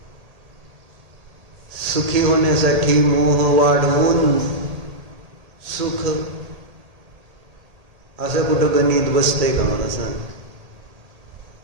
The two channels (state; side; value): late; left; 1.8 ms